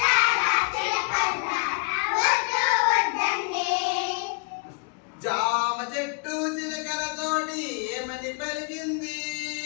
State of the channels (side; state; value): right; quieter; 33.3 dB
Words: జామ చెట్టు చిలకలతోటి ఏమని పలికింది?